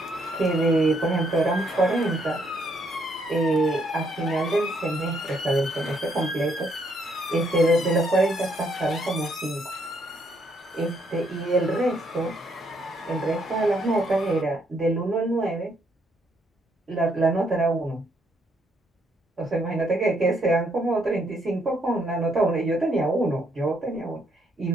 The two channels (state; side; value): normal; both; correlation 0.72